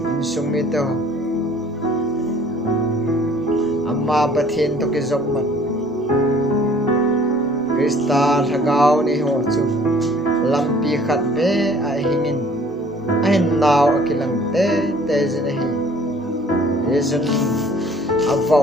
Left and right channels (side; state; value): both; normal; correlation 0.54